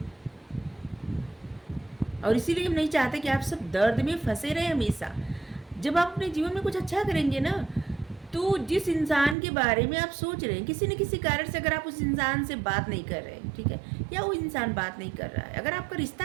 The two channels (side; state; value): left; drops out; at 9.3 s